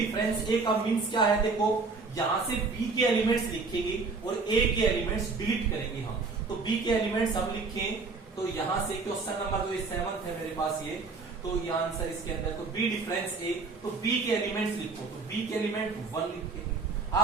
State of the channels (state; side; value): quieter; left; 4.2 dB